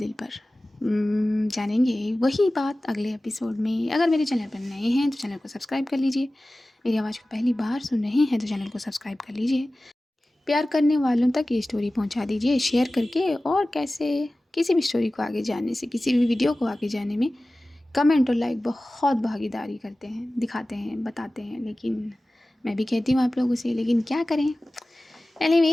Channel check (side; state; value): both; normal; correlation 0.97